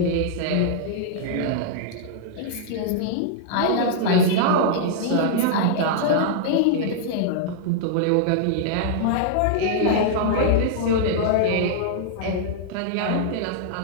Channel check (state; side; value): different; both; correlation -0.01